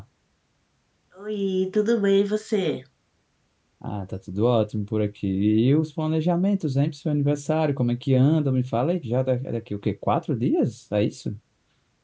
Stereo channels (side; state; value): both; identical; correlation 1.00